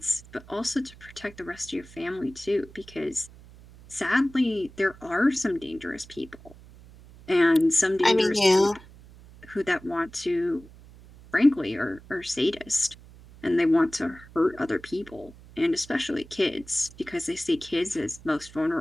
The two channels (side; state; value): right; noise; hum, 21 dB below the sound